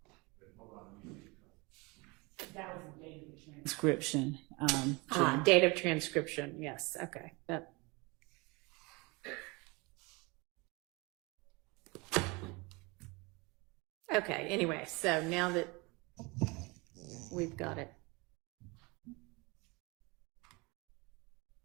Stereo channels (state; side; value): quieter; left; 26.7 dB